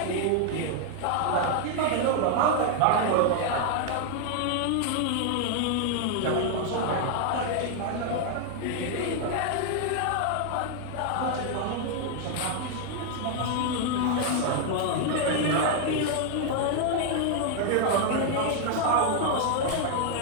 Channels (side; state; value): both; different; correlation 0.00